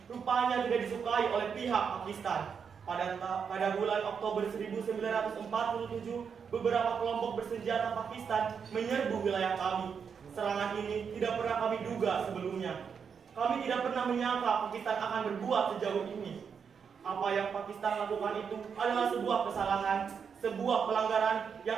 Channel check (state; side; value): quieter; left; 6.6 dB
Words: rupanya tidak disukai oleh pihak Pakistan. Pada bulan Oktober 1947, beberapa kelompok bersenjata Pakistan menyerbu wilayah kami. Serangan ini tidak pernah kami duga sebelumnya. Kami tidak pernah menyangka Pakistan akan berbuat sejauh ini. Apa yang Pakistan lakukan itu adalah sebuah kesalahan, sebuah pelanggaran yang